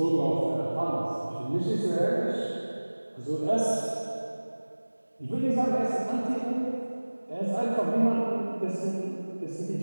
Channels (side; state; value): both; inverted; correlation -1.00